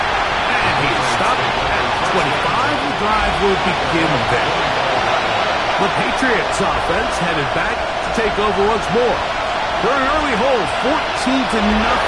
And he stopped at 25. The drive will begin then. The Patriots offense headed back to take over once more. They're in early hold, 14-0.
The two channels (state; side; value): identical; both; correlation 1.00